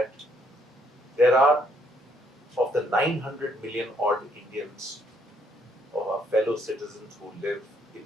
there are, of the 900 million odd Indians, of our fellow citizens who live in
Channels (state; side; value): normal; both; correlation 0.69